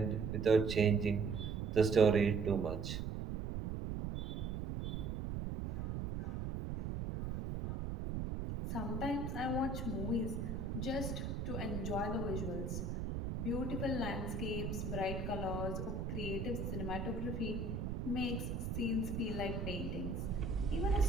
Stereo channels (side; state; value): right; noise; rumble, 3 dB below the sound